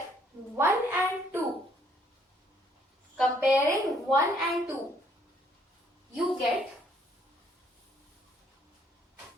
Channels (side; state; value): both; normal; correlation 0.66